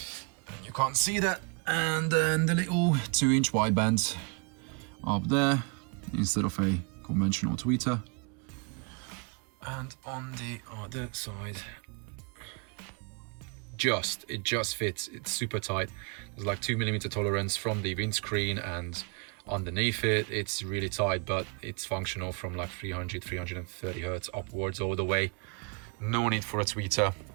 You can't see that. And then the little 2-inch wideband up there instead of a conventional tweeter. And on the other side, it just fits. It's super tight. There's like 2mm tolerance from the windscreen, and underneath it, it's really tight, but it's functional from like 330 hertz upwards all the way. No need for a tweeter.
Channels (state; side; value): quieter; left; 32.7 dB